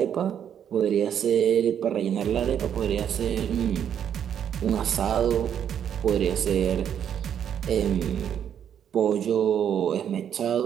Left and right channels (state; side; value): quieter; left; 9.0 dB